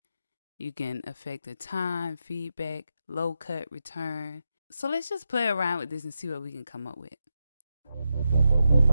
You can affect the time, feedback, low cut, return. So let's just play around with this and see what we can come up with.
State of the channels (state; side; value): inverted; both; correlation -0.87